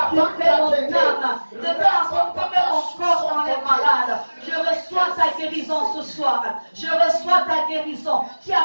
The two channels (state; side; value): inverted; both; correlation -1.00